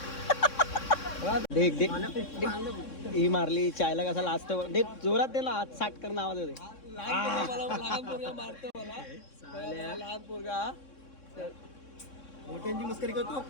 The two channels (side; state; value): right; late; 3.6 ms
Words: देख देख ही मारली चायला कसा लाजत. देख जोरात दे ना. आज 60 कर नावात होते. लहान पोरगा मारतो मला. लहान पोरगा मोठ्यांची मस्करी करतो.